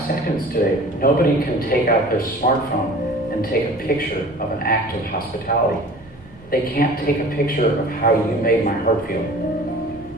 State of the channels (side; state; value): right; noise; rumble, 23 dB below the sound